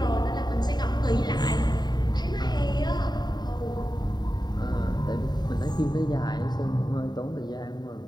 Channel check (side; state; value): right; late; 0.20 ms